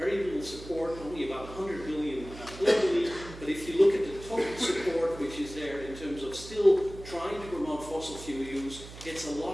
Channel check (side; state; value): right; noise; hum, 14 dB below the sound